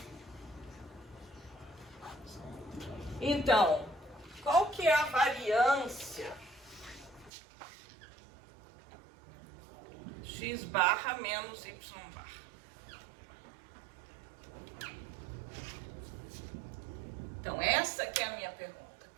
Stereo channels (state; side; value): drops out; left; at 7.3 s